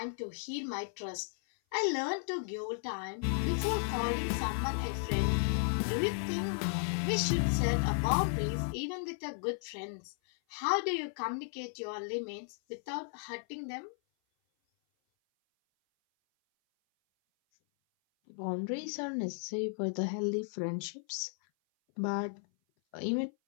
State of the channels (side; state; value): right; silent; 55 dB below the other